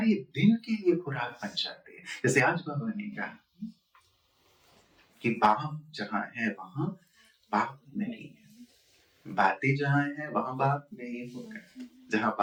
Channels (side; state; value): both; identical; correlation 1.00